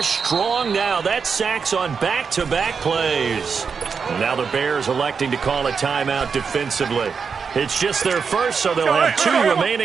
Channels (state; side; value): quieter; left; 5.8 dB